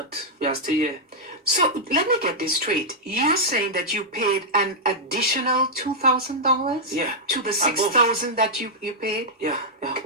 we are still here. So let me get this straight. You're saying that you paid an additional $2,000? Yeah. To the $6,000 that you paid? Yeah.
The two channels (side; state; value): both; normal; correlation -0.07